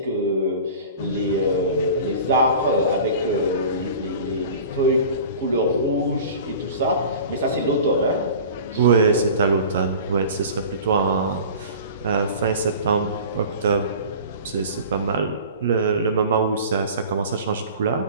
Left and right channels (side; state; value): both; inverted; correlation -0.40